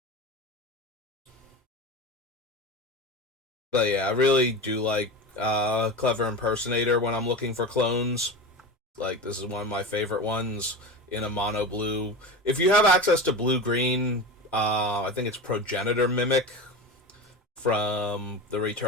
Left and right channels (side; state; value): both; normal; correlation 0.27